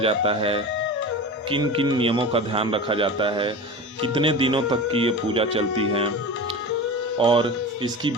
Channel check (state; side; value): normal; both; correlation 0.30